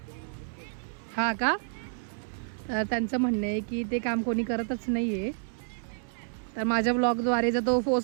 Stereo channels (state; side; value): silent; left; digital silence